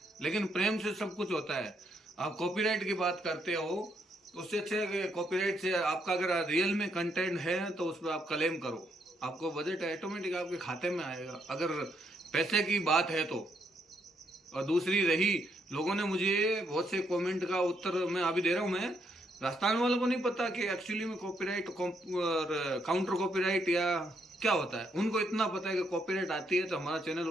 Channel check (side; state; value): both; normal; correlation 0.76